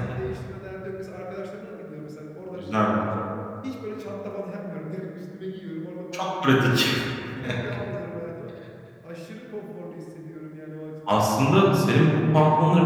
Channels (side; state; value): both; identical; correlation 1.00